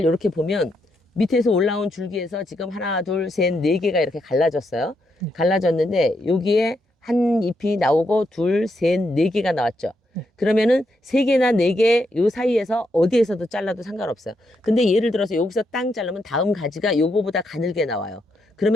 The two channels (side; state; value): both; normal; correlation 0.80